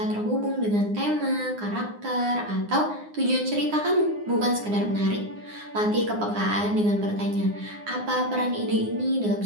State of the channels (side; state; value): left; late; 9.7 ms